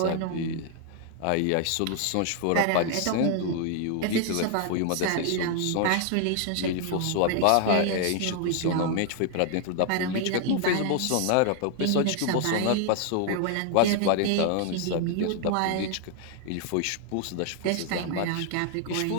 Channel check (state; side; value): different; both; correlation 0.00